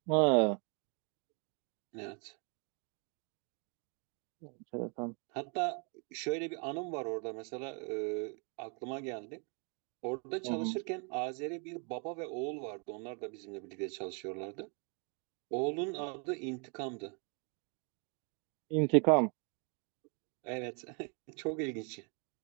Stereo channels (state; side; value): quieter; left; 37.5 dB